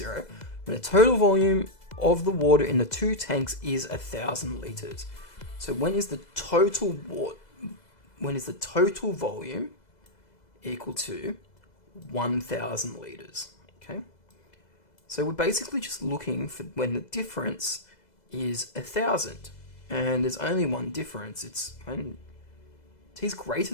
when the total volume of the water in the two tanks is 1,000 liters. So when is the total volume equal to 1,000 liters? Okay. So we're basically just looking for when the difference is 1,000, and there's only one difference. It's when t is greater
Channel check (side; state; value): right; late; 2.0 ms